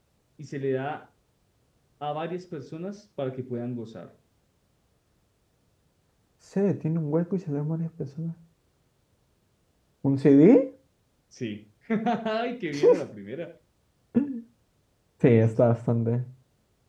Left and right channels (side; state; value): both; identical; correlation 1.00